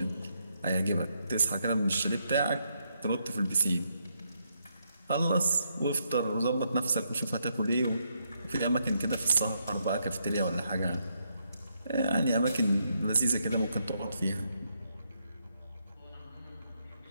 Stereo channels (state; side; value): inverted; both; correlation -0.78